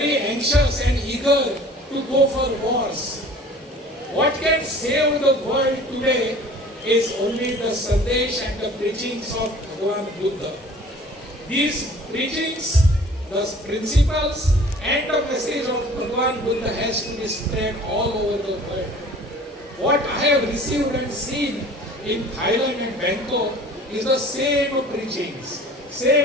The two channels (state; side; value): normal; both; correlation 0.47